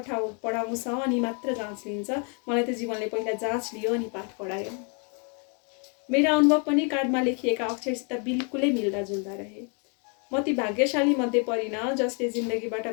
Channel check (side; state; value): right; quieter; 37.8 dB